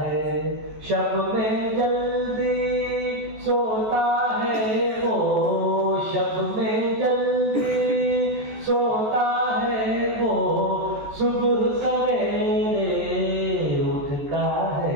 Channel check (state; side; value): late; left; 14 ms